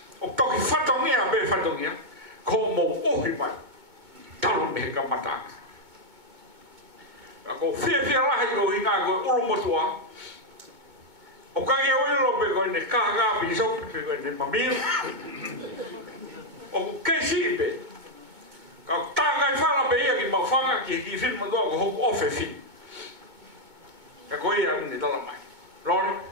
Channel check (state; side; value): late; left; 2.2 ms